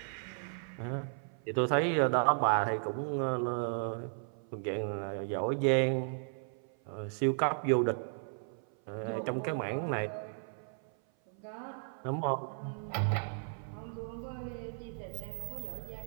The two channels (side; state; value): left; silent; 54 dB below the other